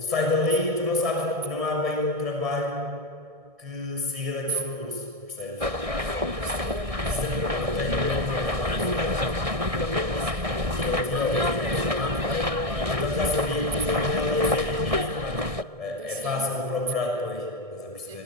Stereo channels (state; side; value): late; left; 1.6 ms